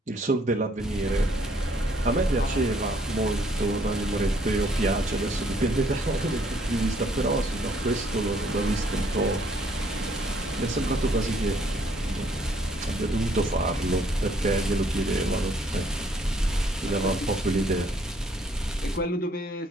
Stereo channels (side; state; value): both; normal; correlation 0.65